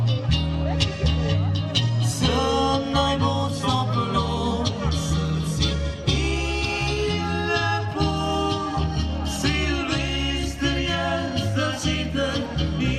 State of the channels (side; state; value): both; identical; correlation 1.00